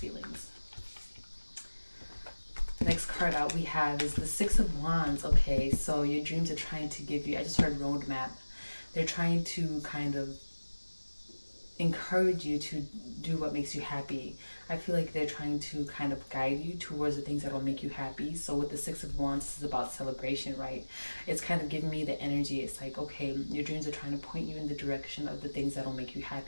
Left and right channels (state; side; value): inverted; both; correlation -1.00